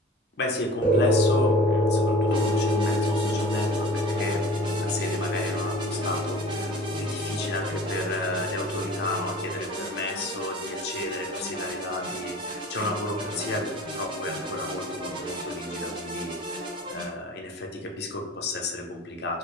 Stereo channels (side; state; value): both; normal; correlation 0.42